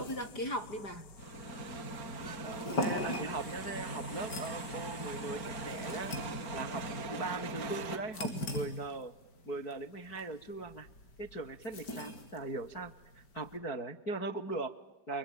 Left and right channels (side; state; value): right; late; 5.1 ms